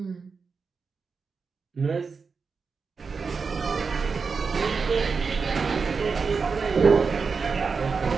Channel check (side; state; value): left; quieter; 5.1 dB